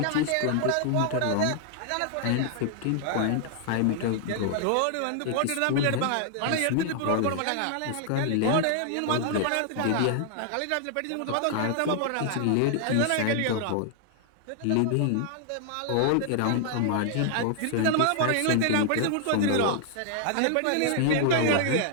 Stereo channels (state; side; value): different; both; correlation 0.00